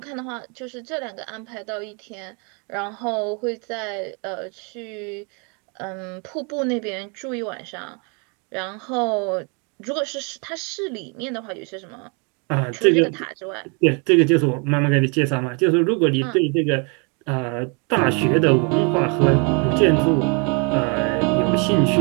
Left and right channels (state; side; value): quieter; left; 34.6 dB